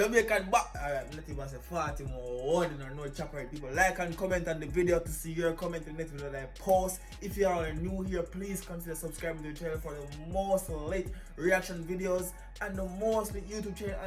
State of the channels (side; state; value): both; identical; correlation 1.00